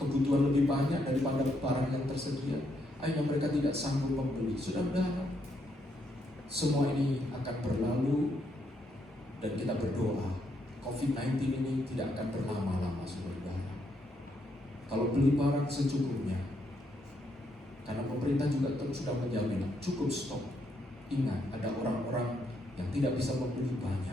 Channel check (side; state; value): both; normal; correlation 0.76